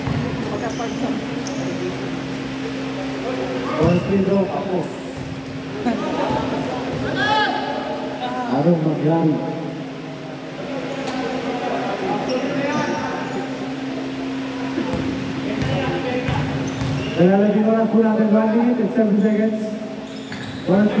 First free throw ako. Anong mangyari? Nalalagyan oras po natin 1 minute and 7 seconds. First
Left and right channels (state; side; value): identical; both; correlation 1.00